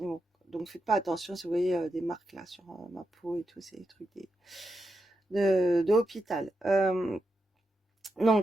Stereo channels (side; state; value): both; normal; correlation 0.86